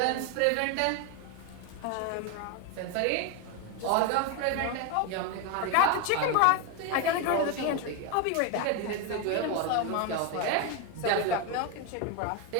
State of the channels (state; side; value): different; both; correlation 0.02